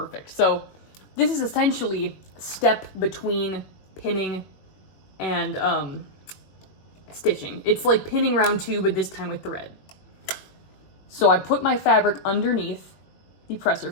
So this is essentially a step between pinning and stitching. It's like pinning round 2, but this time with thread. So I put my fabric underneath the presser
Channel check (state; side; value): late; right; 21 ms